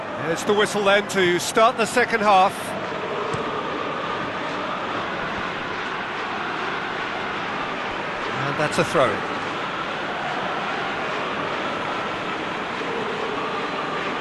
There's the whistle then to start the second half. And that's a throw.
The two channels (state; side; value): identical; both; correlation 1.00